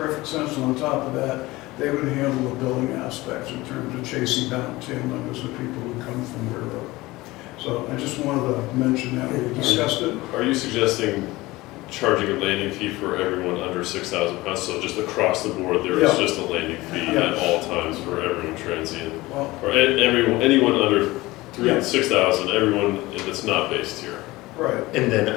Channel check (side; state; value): right; quieter; 19.9 dB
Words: sense. And on top of that, they would handle the billing aspects in terms of chasing down tail numbers of people who come from wherever. So I just wanted to mention that, we discussed it. Are you suggesting charging a landing fee for everyone under 6,000 pounds? So just across the board, there is Yeah. just a landing fee Yeah. at all times for everyone transient? Well, Or anyone under Yeah. 6,000, everyone that's not based here? right. And then